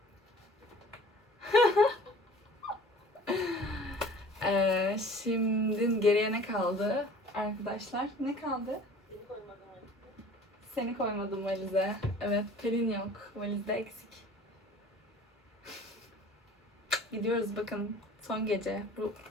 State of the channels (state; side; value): normal; both; correlation 0.47